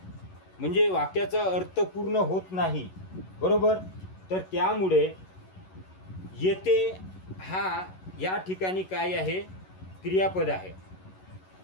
म्हणजे वाक्याचा अर्थ पूर्ण होत नाही. बरोबर. तर त्यामुळे येते हा या ठिकाणी काय आहे? क्रियापद आहे.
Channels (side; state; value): right; late; 11 ms